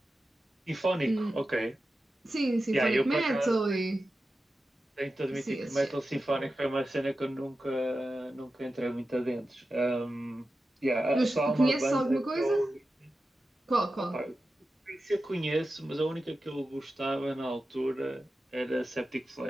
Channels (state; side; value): normal; both; correlation 0.92